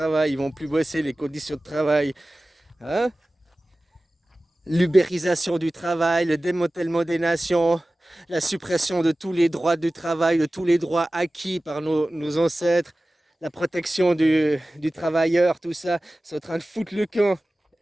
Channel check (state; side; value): normal; both; correlation 0.96